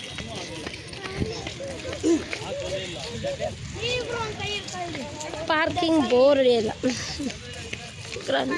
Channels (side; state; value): both; identical; correlation 1.00